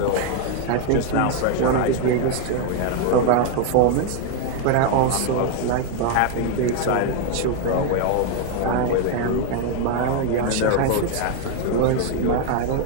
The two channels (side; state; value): both; different; correlation 0.01